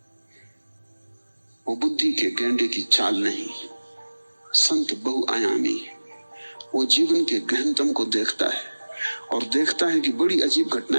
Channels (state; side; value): inverted; both; correlation -1.00